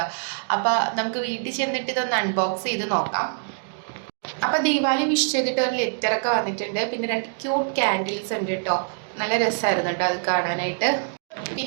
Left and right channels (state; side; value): silent; left; digital silence